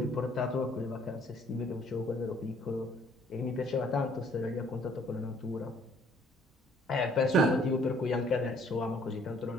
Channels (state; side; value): normal; both; correlation 0.61